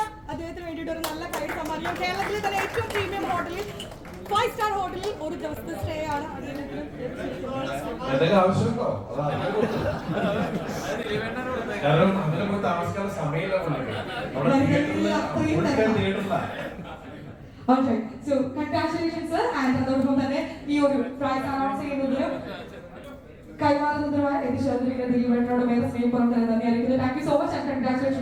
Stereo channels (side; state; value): both; identical; correlation 1.00